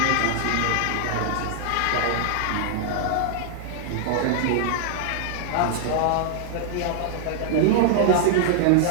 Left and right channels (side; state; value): both; different; correlation -0.01